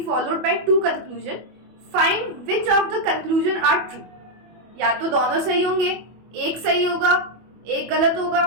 followed by two conclusion. Find which of the conclusion are true. या तो दोनों सही होंगे, एक सही होगा, एक गलत होगा,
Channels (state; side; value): late; left; 25 ms